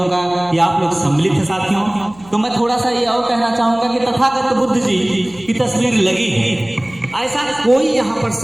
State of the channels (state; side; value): noise; left; hum, 24 dB below the sound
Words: का कि आप लोग सम्मिलित हैं साथियों। तो मैं थोड़ा सा ये और कहना चाहूंगा कि तथागत बुद्ध जी की तस्वीर लगी है, ऐसा कोई यहाँ पर